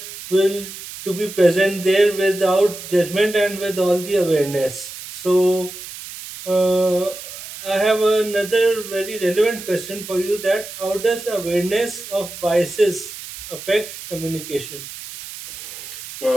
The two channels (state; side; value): noise; right; hiss, 12 dB below the sound